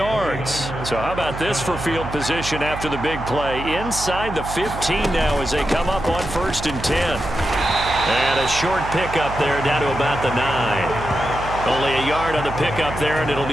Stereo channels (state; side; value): noise; right; hum, 9 dB below the sound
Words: So how about this for field position after the big play? Inside the 15 now as they come up on 1st and 10. And a short pickup there down to about the 9. Only a yard on the pickup there, and it'll